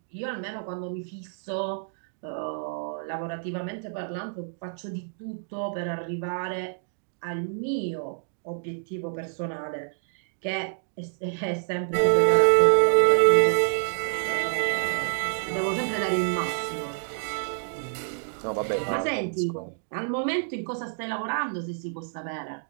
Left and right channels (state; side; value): silent; left; digital silence